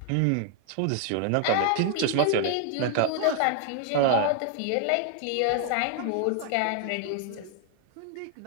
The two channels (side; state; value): both; different; correlation 0.00